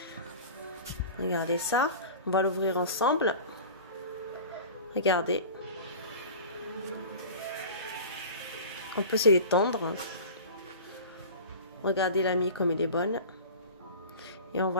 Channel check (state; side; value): inverted; both; correlation -0.36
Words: Regardez ça. On va l'ouvrir ensemble. Regardez. On peut se l'étendre. Regardez la mie comme elle est bonne. Et on